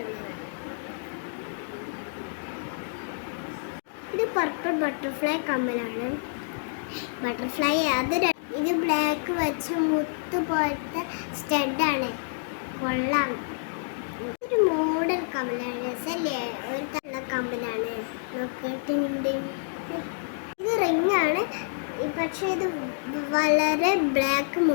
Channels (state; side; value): silent; right; digital silence